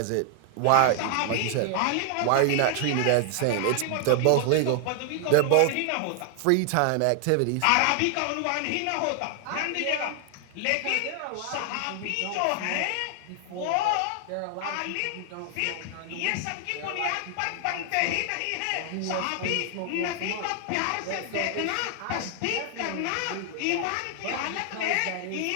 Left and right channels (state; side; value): different; both; correlation 0.00